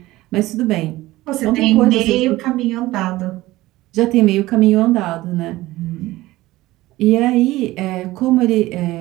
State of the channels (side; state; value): left; quieter; 17.7 dB